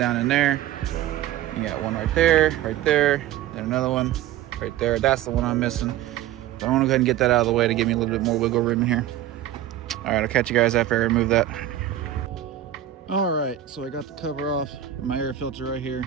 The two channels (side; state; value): left; quieter; 12.0 dB